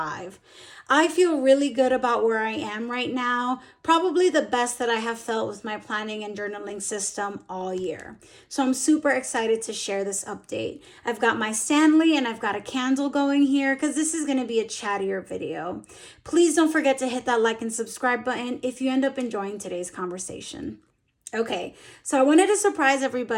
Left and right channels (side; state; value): both; identical; correlation 1.00